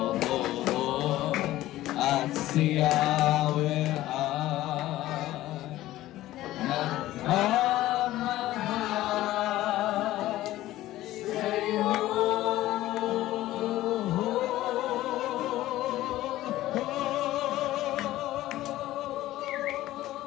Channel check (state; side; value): quieter; right; 15.4 dB